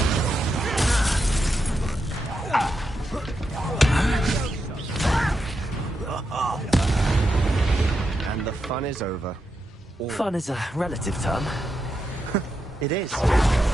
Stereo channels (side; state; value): both; normal; correlation 0.85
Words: And the fun is over. Fun is a relative term. It is.